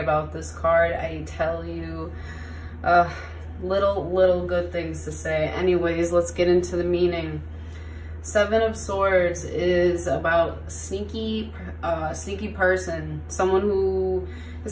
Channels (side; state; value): both; identical; correlation 1.00